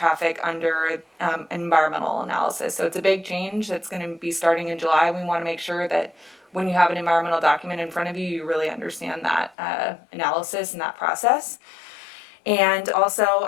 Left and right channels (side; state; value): right; drops out; at 9.6 s